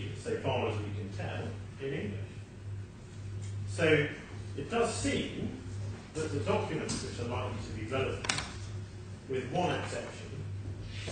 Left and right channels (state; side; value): identical; both; correlation 1.00